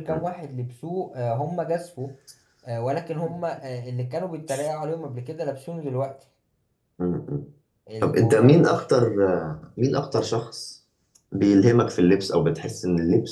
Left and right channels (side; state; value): both; identical; correlation 1.00